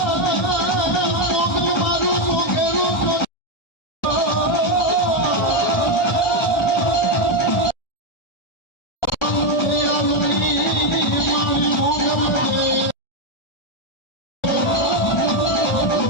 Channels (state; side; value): late; right; 1.4 ms